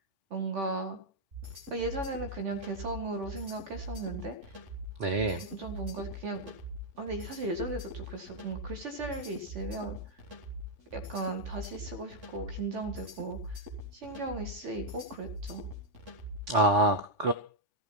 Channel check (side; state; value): left; late; 3.5 ms